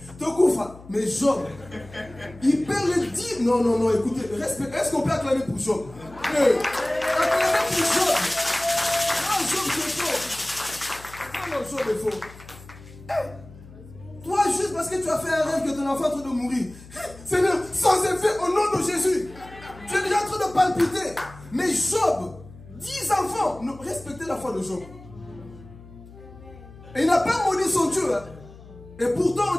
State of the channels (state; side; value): noise; left; hum, 19 dB below the sound